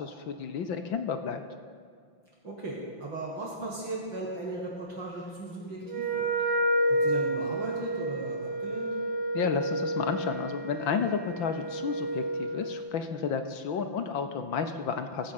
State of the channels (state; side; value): late; right; 5.9 ms